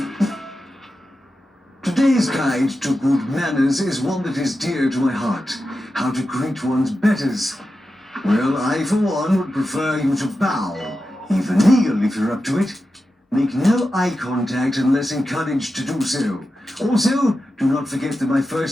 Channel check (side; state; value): both; normal; correlation 0.91